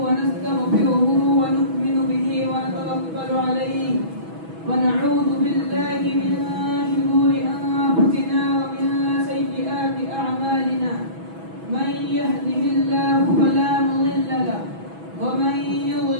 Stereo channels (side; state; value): left; late; 6.1 ms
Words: ونستغفره ونؤمن به ونتوكل عليه ونعوذ بالله من شرور أنفسنا ومن سيئات أعمالنا من يهده الله فلا مضل له ومن